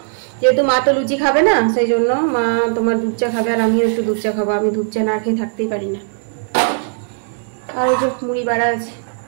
যেহেতু মা তো লুচি খাবে না, সেই জন্য মা তোমার দুধ চা খাবে, আর আমিও একটু দুধ চা খাবো। আমি দুধ চা না খেয়ে থাকতেই পারি না। আর ওই যে মুড়ি বাড়া আছে।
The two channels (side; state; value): left; silent; digital silence